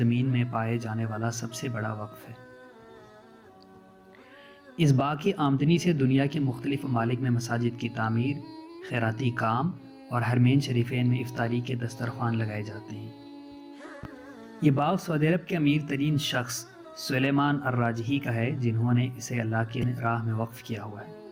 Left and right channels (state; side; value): identical; both; correlation 1.00